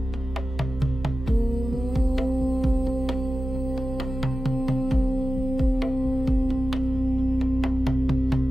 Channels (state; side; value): normal; both; correlation 0.93